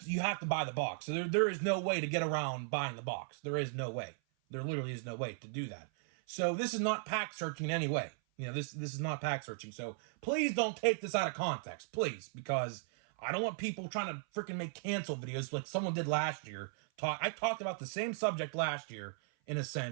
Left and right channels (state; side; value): silent; left; 53 dB below the other